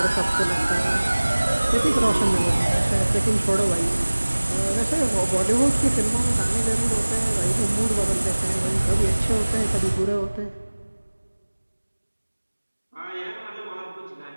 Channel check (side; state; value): both; inverted; correlation -1.00